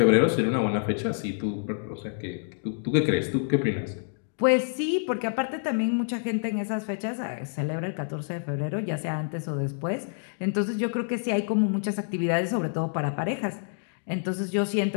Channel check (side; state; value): right; silent; digital silence